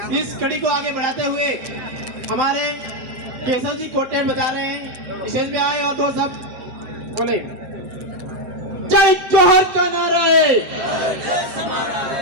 इस कड़ी को आगे बढ़ाते हुए हमारे केशव जी कोटेल बता रहे हैं, स्टेज पे आए और दो सब बोले जय जोहर का नारा है।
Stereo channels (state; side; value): late; left; 7.8 ms